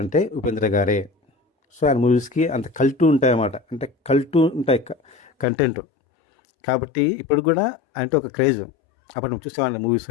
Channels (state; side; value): drops out; right; at 5.5 s